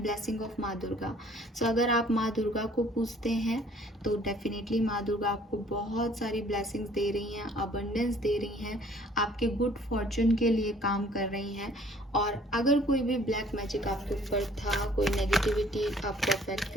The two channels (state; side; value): normal; both; correlation 0.56